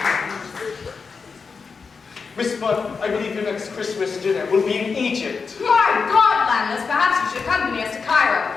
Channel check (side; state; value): right; quieter; 5.1 dB